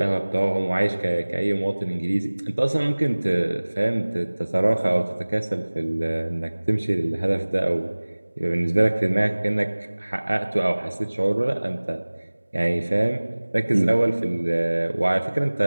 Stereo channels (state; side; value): inverted; both; correlation -1.00